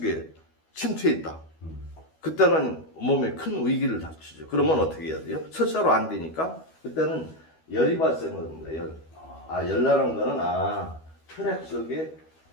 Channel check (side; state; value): right; late; 12 ms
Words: 침투해 있다. 그때는 몸에 큰 위기를 닥치죠. 그러면 어떻게 해야 돼요? 설사로 안 되니까 그때는 열이 발생합니다. 열나는 거는 혈액 속에